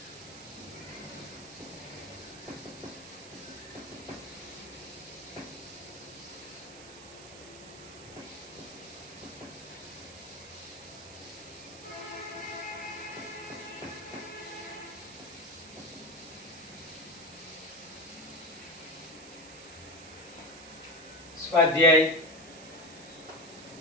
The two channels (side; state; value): right; noise; hiss, 15 dB below the sound